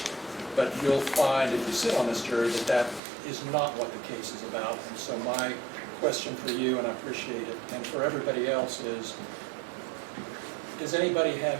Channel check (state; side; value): drops out; left; at 3.0 s